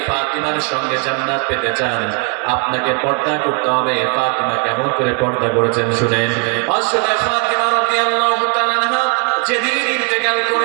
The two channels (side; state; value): left; quieter; 32.4 dB